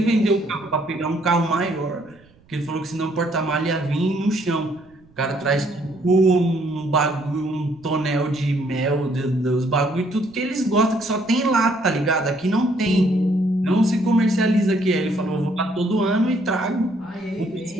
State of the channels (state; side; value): noise; right; rumble, 30 dB below the sound